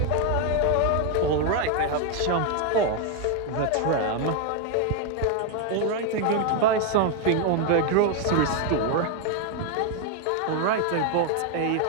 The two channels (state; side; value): different; both; correlation 0.00